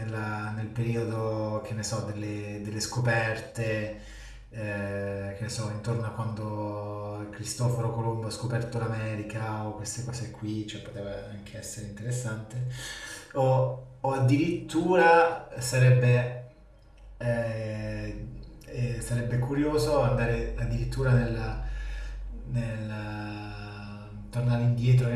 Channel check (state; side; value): identical; both; correlation 1.00